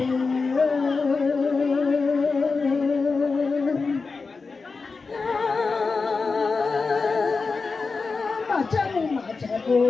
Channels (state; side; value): quieter; right; 4.4 dB